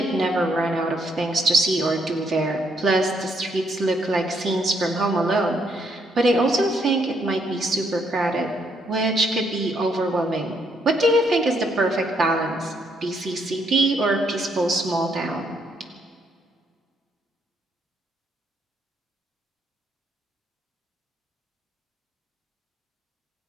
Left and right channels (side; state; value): both; normal; correlation 0.73